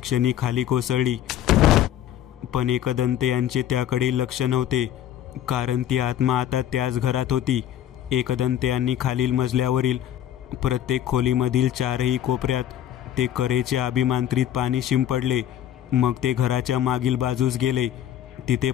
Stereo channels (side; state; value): right; quieter; 11.1 dB